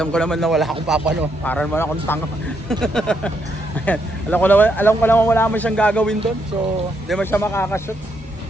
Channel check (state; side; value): normal; both; correlation 0.76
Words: ko naman na wala akong papano. Para naman akong tanga. Ayan. Alam ko naman wala mo siyang gagawin doon. So, hindi man siya makakashoot.